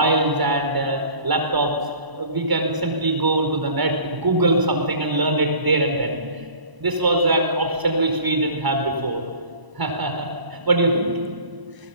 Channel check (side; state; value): left; late; 1.0 ms